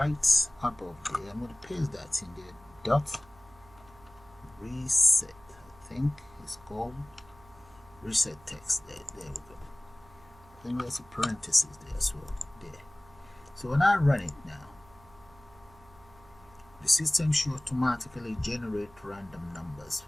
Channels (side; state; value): right; noise; hum, 25 dB below the sound